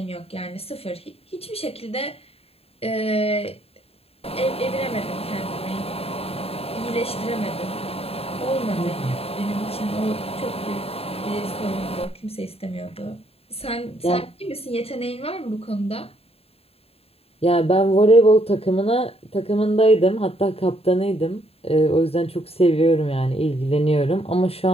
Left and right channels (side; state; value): right; late; 0.29 ms